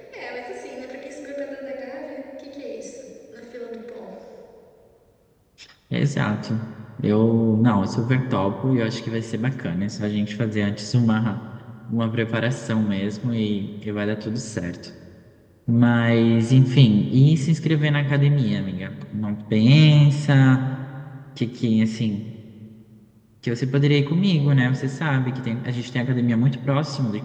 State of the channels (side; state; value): both; identical; correlation 1.00